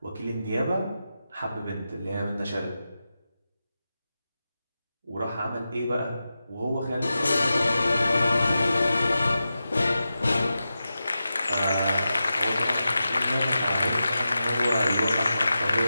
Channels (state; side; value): inverted; both; correlation -0.92